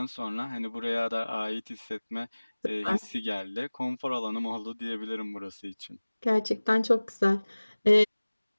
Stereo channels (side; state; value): both; inverted; correlation -1.00